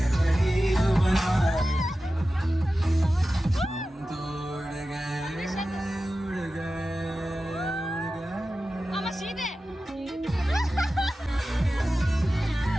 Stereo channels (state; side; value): normal; both; correlation 0.94